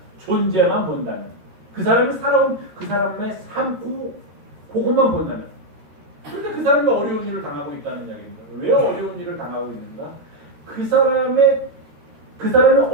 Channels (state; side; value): late; left; 13 ms